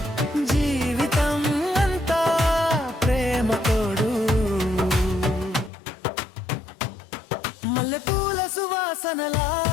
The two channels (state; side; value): drops out; right; at 5.7 s